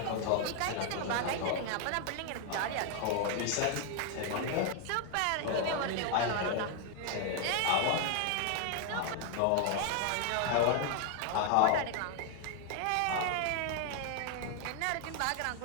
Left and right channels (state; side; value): different; both; correlation 0.00